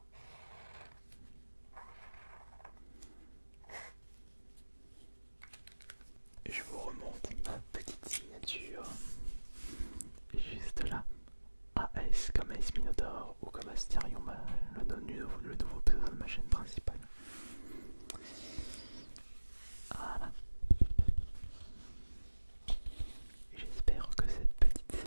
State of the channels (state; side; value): inverted; both; correlation -1.00